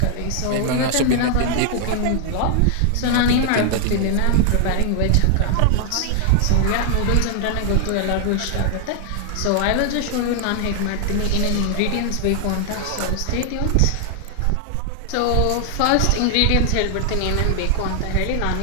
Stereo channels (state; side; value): different; both; correlation 0.00